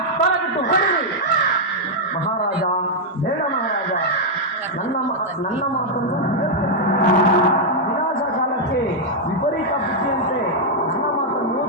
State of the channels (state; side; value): normal; both; correlation -0.03